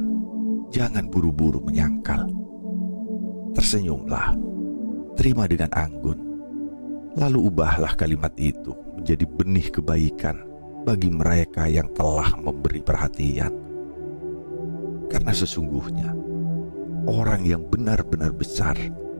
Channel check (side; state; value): both; inverted; correlation -1.00